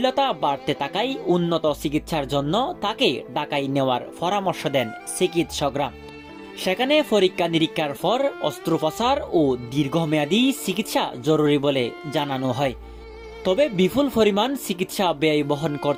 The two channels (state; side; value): identical; both; correlation 1.00